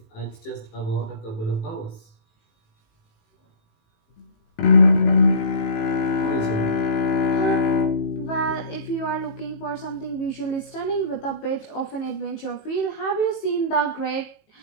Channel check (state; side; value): late; right; 18 ms